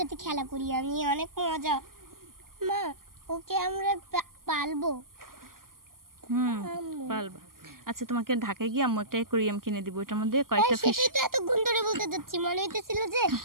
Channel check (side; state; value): left; late; 0.91 ms